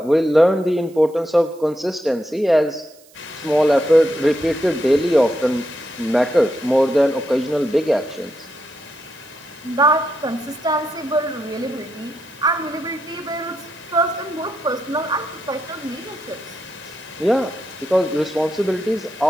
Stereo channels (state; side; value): noise; right; hiss, 27 dB below the sound